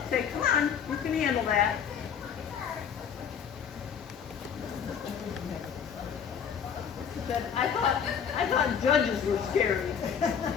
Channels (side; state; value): right; quieter; 7.5 dB